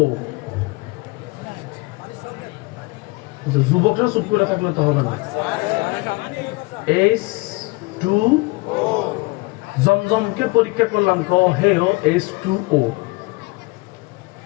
যুবকরা চুপ করে থাকলে তো হবে না। H2O। জমজমকে পরীক্ষা করলাম, হেও H2O।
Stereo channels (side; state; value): right; quieter; 25.1 dB